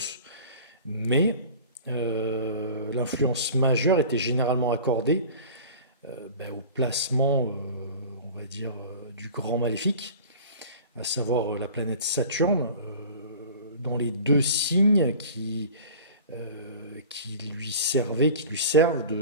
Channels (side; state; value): both; inverted; correlation -0.40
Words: mais l'influence majeure était généralement accordée au placement, on va dire, du grand maléfique, à savoir la planète Saturne, dans les deux signes qui lui servent